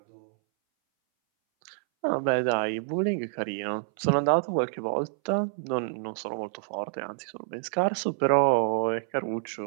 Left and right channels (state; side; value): silent; left; 59 dB below the other